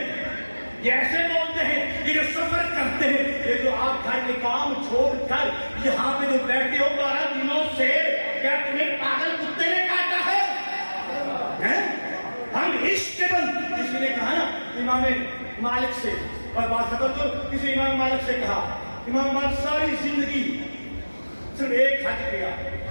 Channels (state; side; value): inverted; both; correlation -1.00